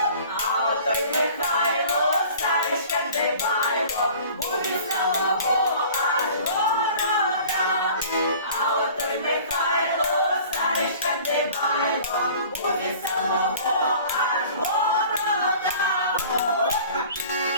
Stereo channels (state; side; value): inverted; both; correlation -0.46